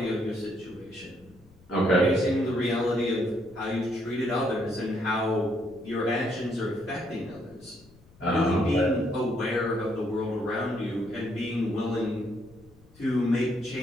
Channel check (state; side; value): noise; left; rumble, 27 dB below the sound